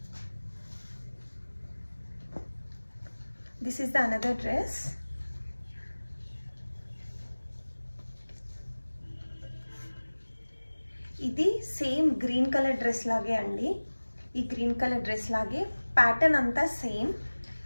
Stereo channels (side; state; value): both; inverted; correlation -1.00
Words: This is the another dress. ఇది సేమ్ గ్రీన్ కలర్ డ్రెస్ లాగే అండి. ఈ గ్రీన్ కలర్ డ్రెస్ లాగే ప్యాటర్న్ అంతా సేమ్,